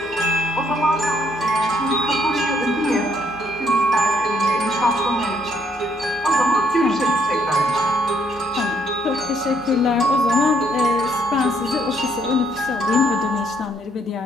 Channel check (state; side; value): normal; both; correlation 0.69